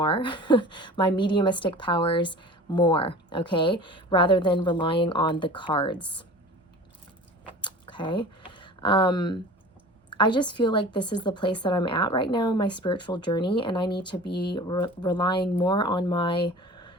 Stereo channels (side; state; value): both; normal; correlation 0.39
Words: my mediumistic powers more, okay? Rather than relying on the cards, okay? I just feel like this is the place that I'm at right now in my spiritual journey, and I need to be relying more on my